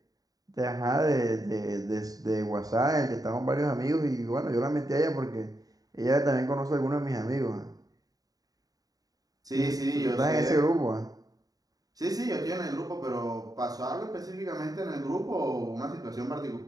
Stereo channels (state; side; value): late; left; 0.18 ms